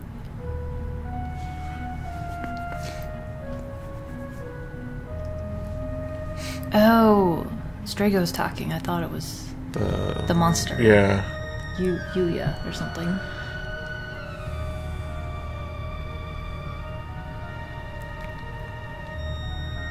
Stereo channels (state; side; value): identical; both; correlation 1.00